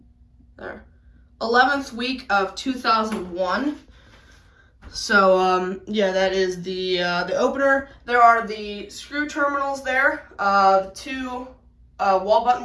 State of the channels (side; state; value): both; identical; correlation 1.00